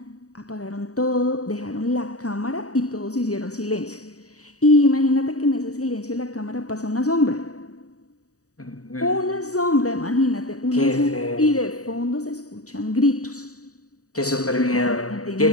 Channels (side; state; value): right; late; 0.66 ms